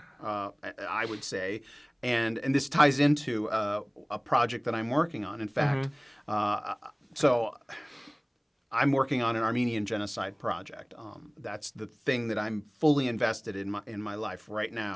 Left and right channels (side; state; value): both; identical; correlation 1.00